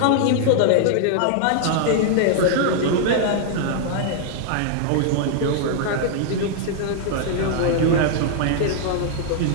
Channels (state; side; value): different; both; correlation -0.01